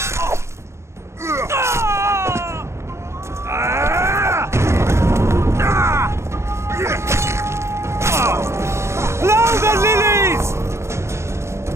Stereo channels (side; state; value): left; late; 0.13 ms